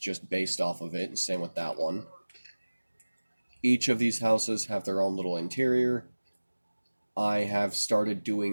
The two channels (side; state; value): both; inverted; correlation -1.00